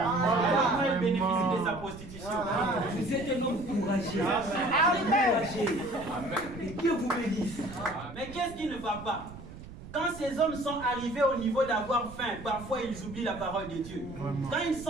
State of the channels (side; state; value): right; noise; rumble, 15 dB below the sound